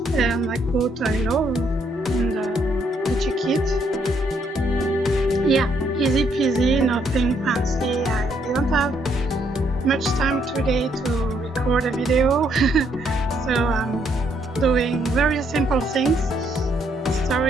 and I put I love in the digi kit. Yeah, easy peasy, nothing fancy. I didn't have much time today to record a video, so I'm doing very simple things.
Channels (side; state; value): both; normal; correlation 0.72